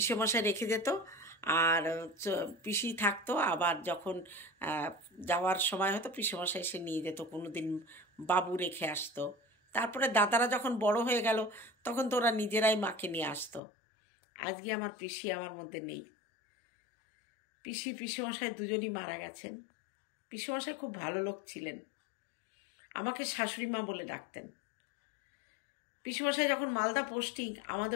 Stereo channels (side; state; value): right; drops out; at 13.6 s